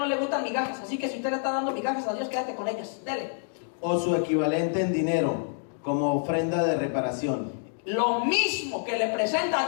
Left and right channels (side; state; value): right; silent; digital silence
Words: le gustan migajas. Así que si usted le está dando migajas a Dios, quédate con ellas. Dele. O su equivalente en dinero, como ofrenda de reparación. Lo mismo que le presenta a